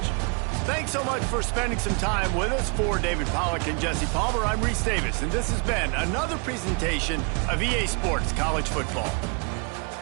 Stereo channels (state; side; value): quieter; left; 35.9 dB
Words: Thanks so much for spending some time with us. For David Pollack and Jesse Palmer, I'm Reese Davis, and this has been another presentation of EA Sports College Football.